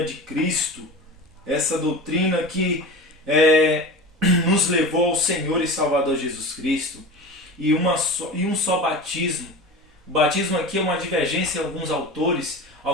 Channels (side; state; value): both; normal; correlation 0.31